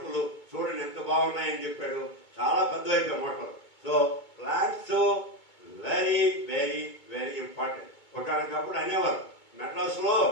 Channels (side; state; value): right; late; 2.2 ms